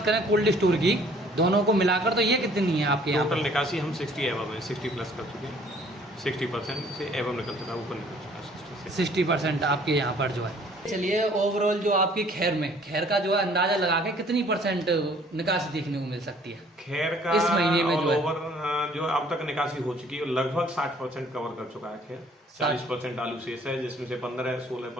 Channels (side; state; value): both; normal; correlation 0.57